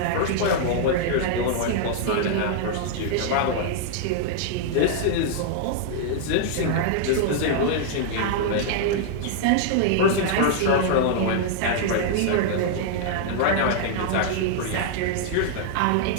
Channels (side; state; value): both; different; correlation -0.01